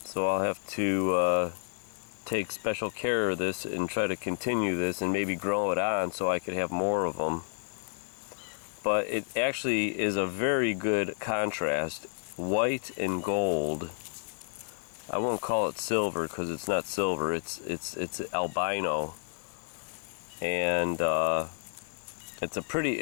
So I'll have to take special care of this and try to continue this and maybe grow it on so I could have more of them. But it actually is a very good contrast, white and gold. I won't call it silver because it's not silver. It's albino, and it's a pretty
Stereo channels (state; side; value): silent; right; 57 dB below the other